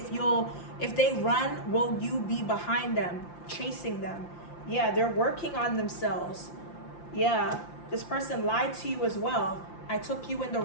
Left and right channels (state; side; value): late; right; 5.8 ms